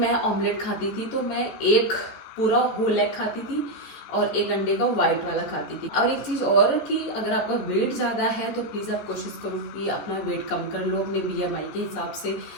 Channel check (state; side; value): late; right; 14 ms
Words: ऑमलेट खाती थी, तो मैं एक पूरा होल एग खाती थी और एक अंडे का वाइट वाला खाती थी। और एक चीज़ और कि अगर आपका वेट ज़्यादा है, तो प्लीज़ आप कोशिश करो कि अपना वेट कम कर लो अपने BMI के हिसाब से।